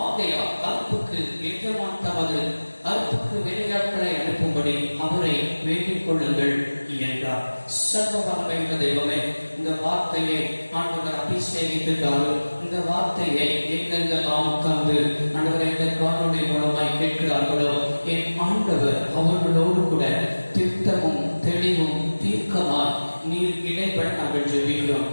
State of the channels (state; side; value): inverted; both; correlation -1.00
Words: ஆகையால் அறுப்புக்கு எஜமான் தமது அறுப்புக்கு வேலையாட்களை அனுப்பும்படி அவரை வேண்டிக் கொள்ளுங்கள் என்றார். சர்வவல்லமையுள்ள தெய்வமே, இந்த வார்த்தையை ஆண்டவர் அபிஷேகித்துட்டாலும் இந்த வார்த்தையை எங்கெங்கெல்லாம் உட்கார்ந்து ஆண்டவர் இந்த காணொளி மூலமாய் கேட்கிறார்களோ என் ஆண்டவர் அவர்களோடு கூட திட்டமும் தெளிவும் தீர்க்கமாய் நீர் இடைபட நாங்கள் ஜெபிக்கிறோம்.